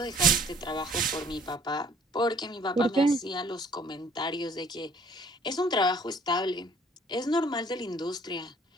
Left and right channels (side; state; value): both; normal; correlation 0.57